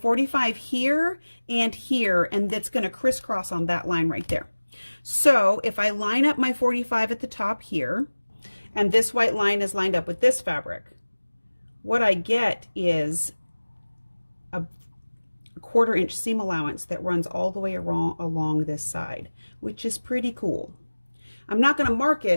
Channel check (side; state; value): both; inverted; correlation -1.00